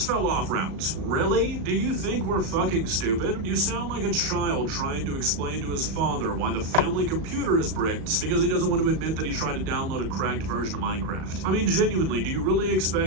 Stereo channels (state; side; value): late; left; 37 ms